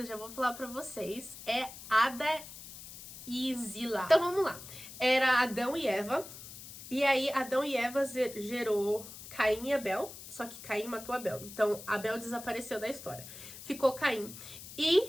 já vou falar pra vocês, é Ada e Zila. Então vamos lá. Era Adão e Eva. E aí, Adão e Eva gerou Caim e Abel, só que Caim matou Abel. Então, Abel desapareceu da história. Ficou Caim.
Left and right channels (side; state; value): left; noise; hiss, 14 dB below the sound